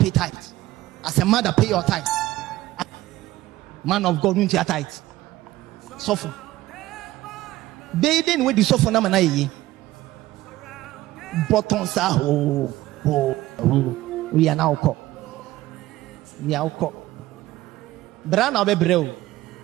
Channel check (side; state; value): left; quieter; 16.5 dB